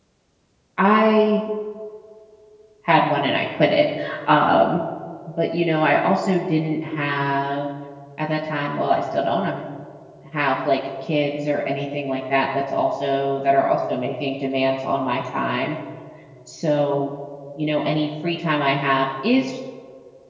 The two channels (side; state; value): both; identical; correlation 1.00